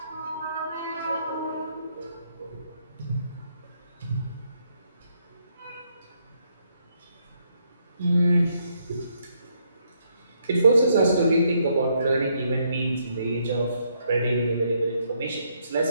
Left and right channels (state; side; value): inverted; both; correlation -0.74